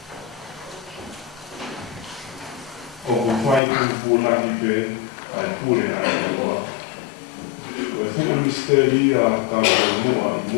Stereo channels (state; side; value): drops out; right; at 3.6 s